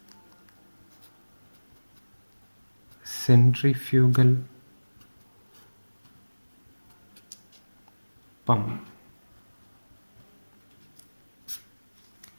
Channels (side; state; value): both; inverted; correlation -1.00